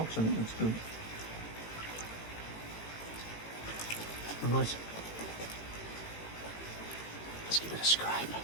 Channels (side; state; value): right; late; 18 ms